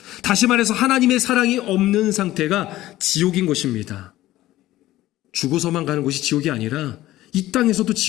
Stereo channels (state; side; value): quieter; right; 15.7 dB